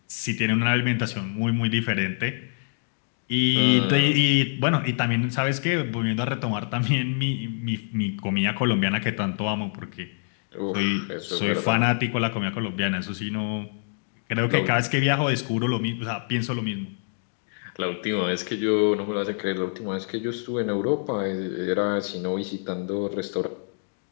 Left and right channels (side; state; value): right; silent; digital silence